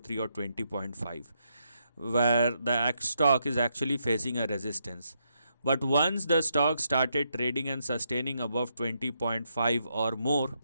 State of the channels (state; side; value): inverted; both; correlation -0.79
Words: or 20.5, where the stock is actually facing a resistance. But once the stock started trading and sustaining above 20.5 or more,